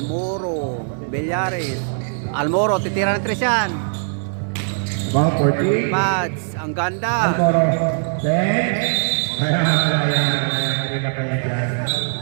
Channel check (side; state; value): left; silent; 65 dB below the other